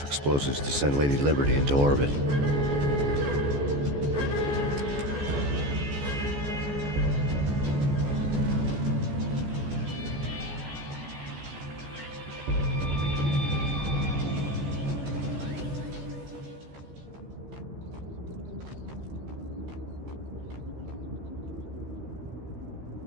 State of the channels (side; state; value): left; late; 14 ms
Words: explosives to send Lady Liberty into orbit.